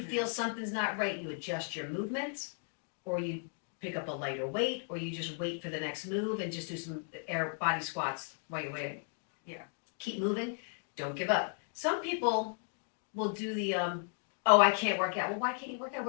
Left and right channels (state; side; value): silent; right; 54 dB below the other